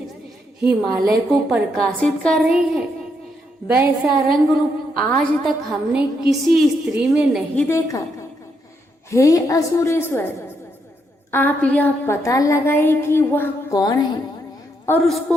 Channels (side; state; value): both; normal; correlation 0.78